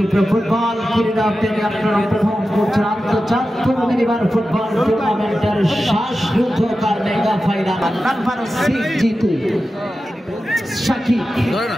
ফুটবল ক্রীড়া প্রেমী আপনারা উপভোগ করছেন আন্তর্জাতিক মিনিবার ফুটবল টুর্নামেন্টের শেষ যুদ্ধকার mega final number 6 Jitu Sakib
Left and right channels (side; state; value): both; normal; correlation 0.93